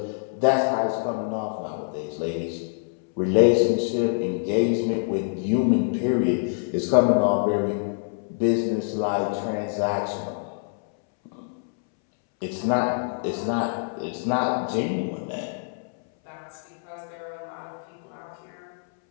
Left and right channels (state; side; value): silent; right; 61 dB below the other